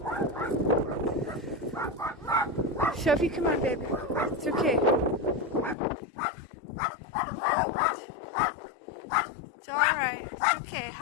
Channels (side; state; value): right; drops out; at 5.8 s